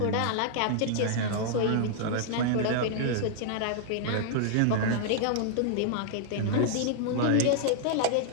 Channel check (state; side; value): different; both; correlation -0.01